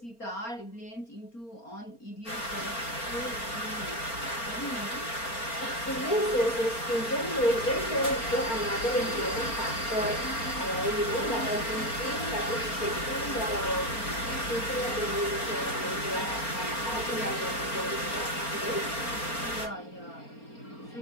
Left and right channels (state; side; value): late; right; 4.3 ms